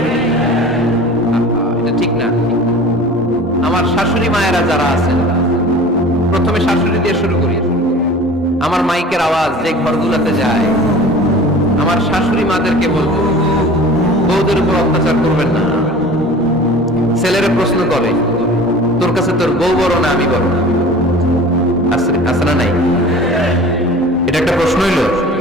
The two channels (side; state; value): both; normal; correlation 0.41